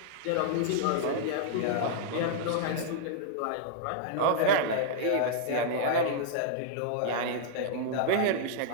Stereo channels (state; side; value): different; both; correlation -0.01